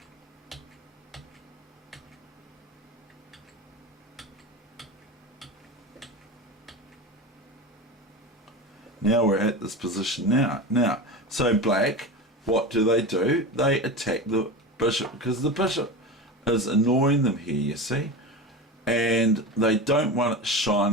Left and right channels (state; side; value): normal; both; correlation 0.26